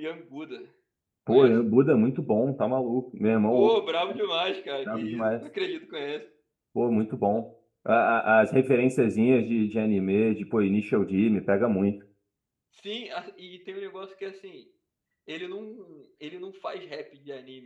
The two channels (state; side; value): identical; both; correlation 1.00